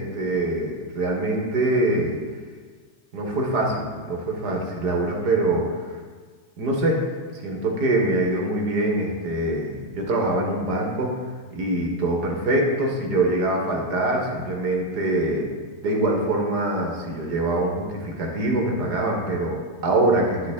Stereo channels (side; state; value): left; late; 4.9 ms